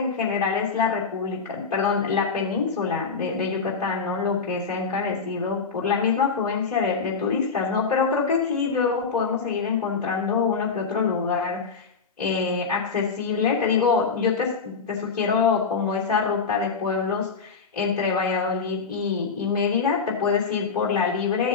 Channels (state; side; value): quieter; right; 5.2 dB